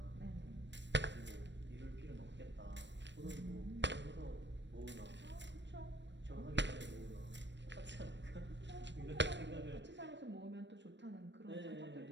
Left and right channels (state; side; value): late; left; 0.52 ms